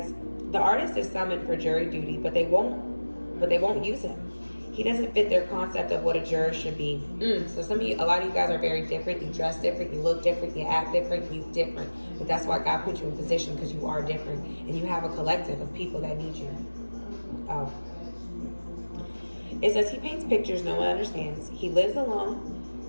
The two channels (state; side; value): inverted; both; correlation -1.00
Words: the artist is summoned for jury duty, but they won't use him. He doesn't fit their concept of what a juror should be. So a lot of you guys are very different. You dress different, you look different, you act different, you different. But that's why God put you in position, because you are different. And you have a collective of people that need you. Oh. It says he paints pictures no one understands. He lives